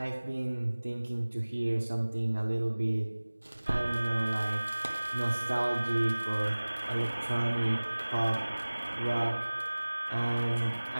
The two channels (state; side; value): inverted; both; correlation -1.00